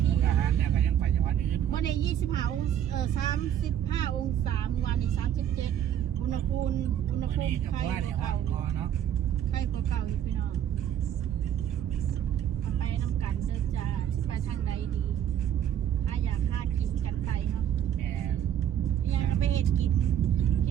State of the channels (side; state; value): left; quieter; 10.1 dB